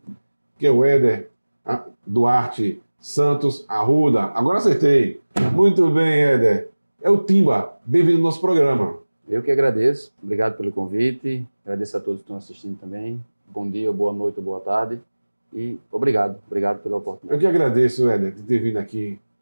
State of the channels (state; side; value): inverted; both; correlation -1.00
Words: que é o Éder Duarte Santos Arruda. Agora acertei. Muito bem, Éder. É o Timba. Bem-vindo ao nosso programa. Eu que agradeço. Obrigado pelo convite. Agradeço a todos que estão assistindo também. Bom dia, boa noite, boa tarde. E obrigado pela oportunidade. Eu que agradeço, Éder, de ter vindo aqui